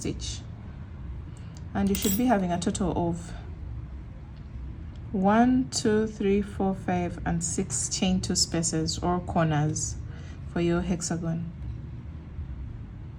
and you should be having a total of 1, 2, 3, 4, 5, and 6 chain 2 spaces or corners for your hexagon.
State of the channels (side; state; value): both; identical; correlation 1.00